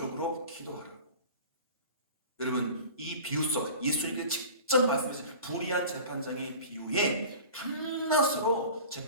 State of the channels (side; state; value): both; inverted; correlation -0.40